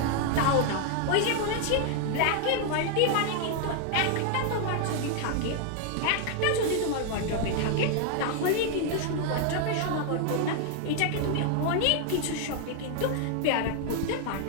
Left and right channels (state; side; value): different; both; correlation 0.00